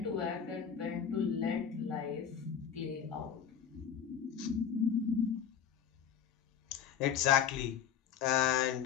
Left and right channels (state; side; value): quieter; right; 8.4 dB